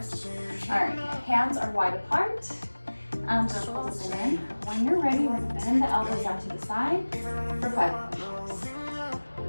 All right, hands are wide apart. Circles in. When you're ready, we're going to bend the elbows out to the side for 5 push-ups.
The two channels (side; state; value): both; inverted; correlation -1.00